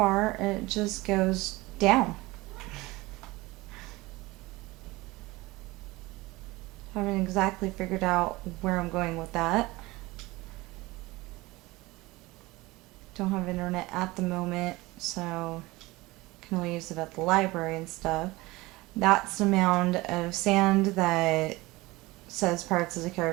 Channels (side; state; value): left; quieter; 21.0 dB